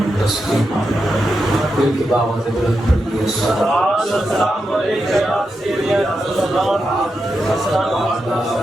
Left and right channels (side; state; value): both; normal; correlation 0.87